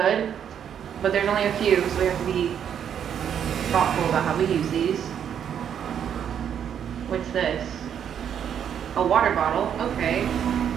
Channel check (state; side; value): quieter; left; 8.7 dB